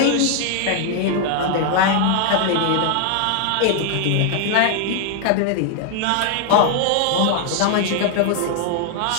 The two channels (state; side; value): different; both; correlation 0.00